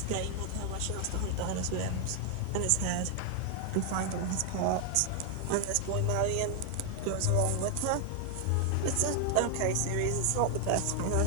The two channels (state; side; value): different; both; correlation 0.00